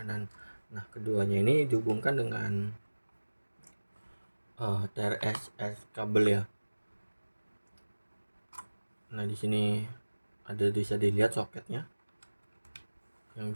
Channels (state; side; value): inverted; both; correlation -1.00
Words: Nah, keduanya ini dihubungkan dengan TRS kabel ya. Nah, di sini bisa dilihat soketnya. Yang